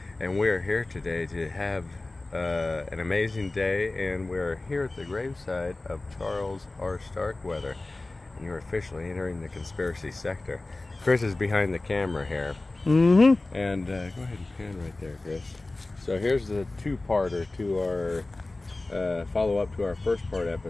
And we're here today to have an amazing day, and we're here at the graveside of Charles R. Starkweather. And you're officially entering the conspiracy sector. Chris is behind the camera here. Mm-hmm. And go ahead and pan right there, Chris. So here's the two-parter to our follow-up to our first part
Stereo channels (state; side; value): quieter; right; 3.0 dB